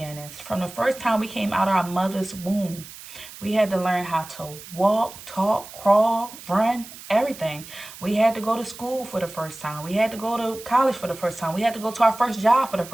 From the first time we came out of our mother's womb, we had to learn how to walk, talk, crawl, run, everything. We had to go to school for the first time. We had to go to college for the first time. We had to go to our first job for the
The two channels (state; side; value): noise; right; hiss, 16 dB below the sound